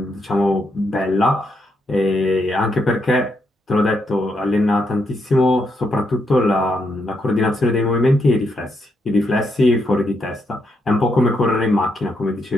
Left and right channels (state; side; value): normal; both; correlation 0.79